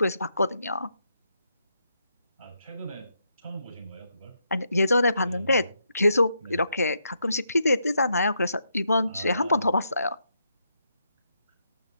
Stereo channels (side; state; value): both; inverted; correlation -0.79